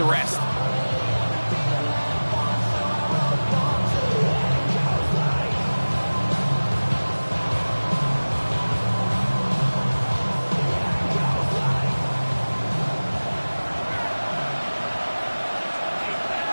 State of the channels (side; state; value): both; inverted; correlation -1.00